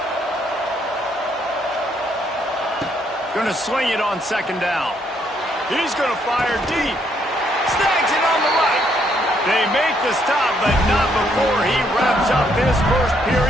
Going to swing it on 2nd down. He's going to fire deep. Snags it on the right. They make the stop, but not before he wraps up this first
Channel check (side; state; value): both; normal; correlation 0.71